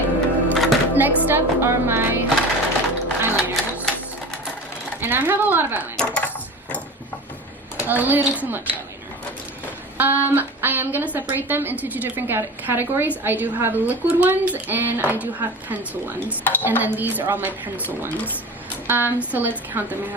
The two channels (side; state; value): both; normal; correlation 0.33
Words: next up are my eyeliners. And I have a lot of eyeliners. A little too much eyeliner. I am going to separate them into 2 different categories. I do have liquid ones and I do have pencil ones. And then these are all my pencil ones. So let's count them. I